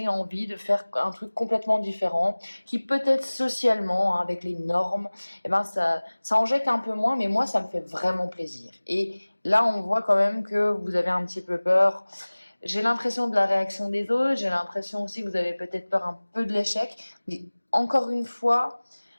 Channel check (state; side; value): inverted; both; correlation -1.00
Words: envie de faire un truc complètement différent, qui peut-être socialement, hein, avec les normes, et ben ça en jette un peu moins, mais moi ça me fait vraiment plaisir. Et là on voit quand même que vous avez un petit peu peur. J'ai l'impression de la réaction des autres, j'ai l'impression aussi que vous avez peut-être peur un peu de l'échec, mais encore une fois,